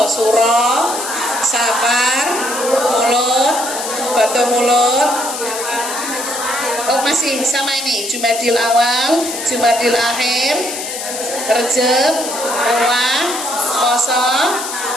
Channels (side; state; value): left; noise; hiss, 6 dB below the sound